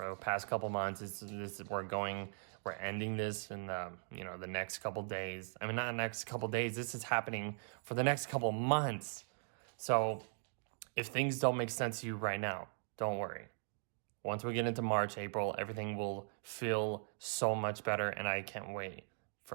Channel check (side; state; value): left; silent; digital silence